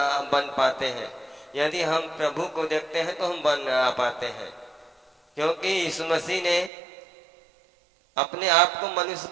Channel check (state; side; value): drops out; left; at 6.7 s